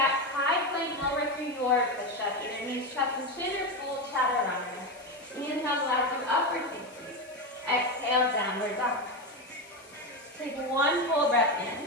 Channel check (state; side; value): noise; left; hiss, 24 dB below the sound